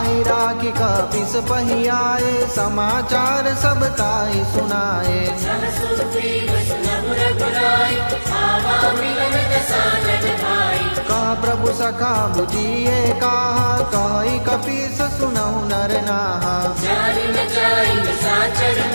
राखी कपिस पहि आए समाचार सब ताहि सुनाए। सब सुग्रीव सुनहु रघुराई आवा मिलन दसानन भाई। कह प्रभु सखा बुझिए कहा कहि कपीस सुनहु नर नाहा। जानि न जाई निशाचर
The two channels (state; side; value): inverted; both; correlation -1.00